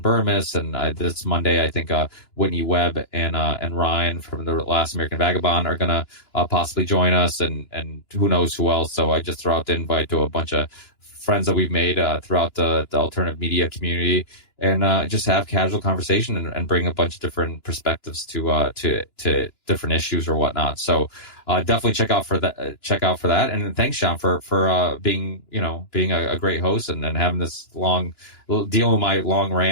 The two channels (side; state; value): right; late; 2.9 ms